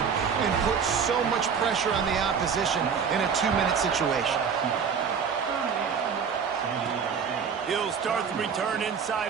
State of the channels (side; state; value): left; quieter; 6.5 dB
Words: and put so much pressure on the opposition in a 2-minute situation. He'll start the return